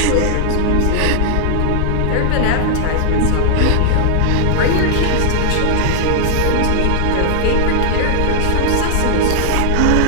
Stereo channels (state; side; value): different; both; correlation -0.01